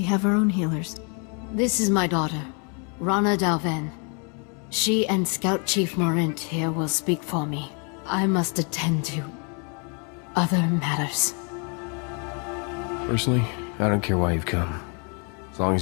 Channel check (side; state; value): right; quieter; 36.8 dB